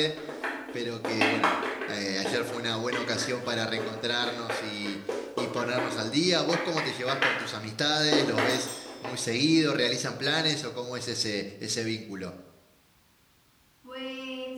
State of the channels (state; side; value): identical; both; correlation 1.00